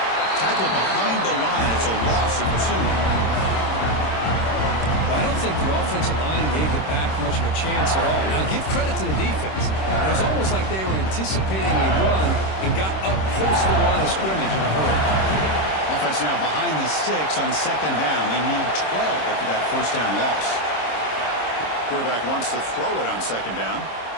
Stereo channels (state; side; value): late; right; 26 ms